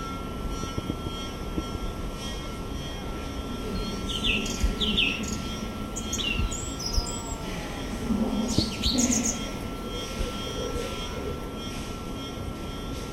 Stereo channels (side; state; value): both; identical; correlation 1.00